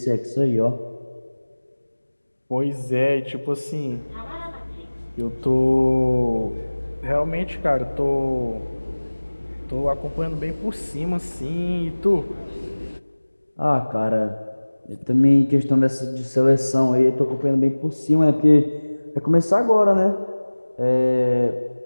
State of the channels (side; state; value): both; inverted; correlation -1.00